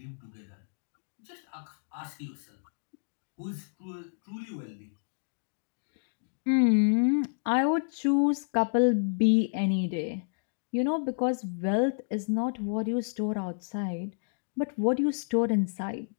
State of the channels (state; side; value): silent; right; digital silence